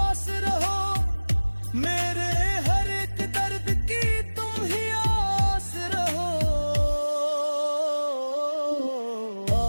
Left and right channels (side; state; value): both; inverted; correlation -1.00